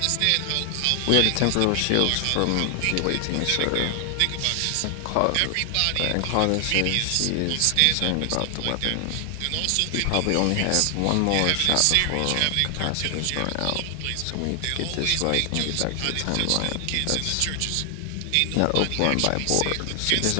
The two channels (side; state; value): both; different; correlation 0.00